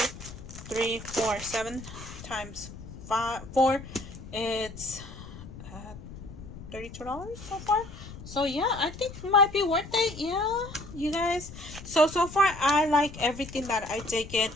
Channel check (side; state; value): left; noise; rumble, 13 dB below the sound